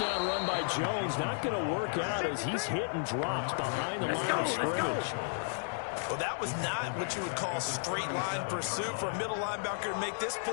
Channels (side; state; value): right; silent; digital silence